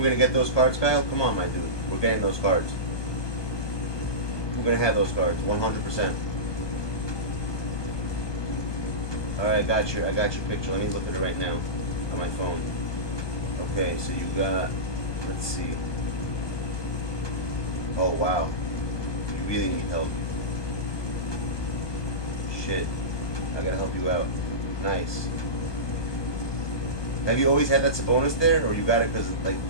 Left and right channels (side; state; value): right; late; 1.2 ms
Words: gonna get those cards, Kyle? Come on, my dude. We're getting those cards. We're gonna have those cards, 100%. Alright, I got your picture. Let me look at it right now on my phone. Okay, so you got, let's see. Oh wow. You really need help. Shit. I gotta help you out. Nice. Have you always had that Sabonis there, or you got it because, like,